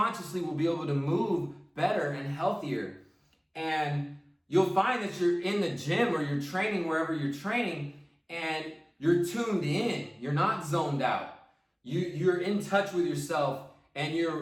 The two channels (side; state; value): both; identical; correlation 1.00